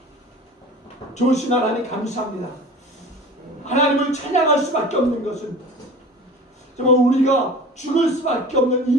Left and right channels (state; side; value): normal; both; correlation 0.39